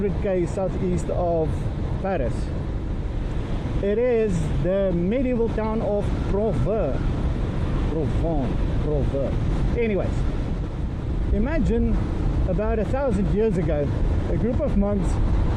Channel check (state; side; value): identical; both; correlation 1.00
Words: southeast of Paris. It is the medieval town of Provins. Anyways, imagine about 1,000 years ago, a group of monks